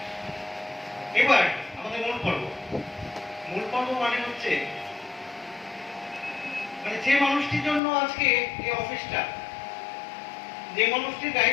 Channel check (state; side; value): drops out; right; at 7.8 s